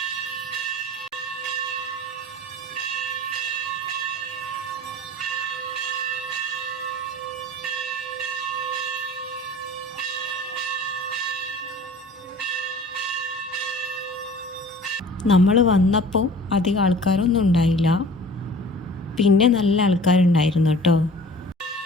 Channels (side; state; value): both; normal; correlation 0.44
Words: നമ്മൾ വന്നപ്പോൾ അധികം ആൾക്കാരൊന്നും ഉണ്ടായില്ല, പിന്നെ നല്ല ആൾക്കാരുണ്ടായിരുന്നു കേട്ടോ.